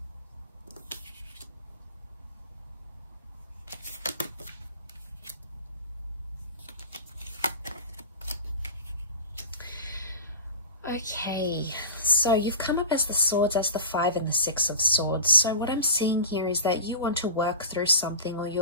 Okay, so you've come up as the swords, as the 5 and the 6 of swords. So what I'm seeing here is that you want to work through something, or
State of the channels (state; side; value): inverted; both; correlation -0.32